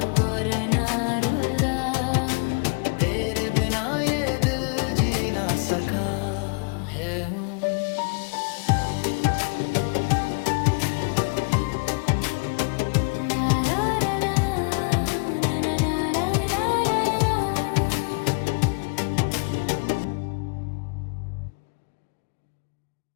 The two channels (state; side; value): quieter; right; 34.5 dB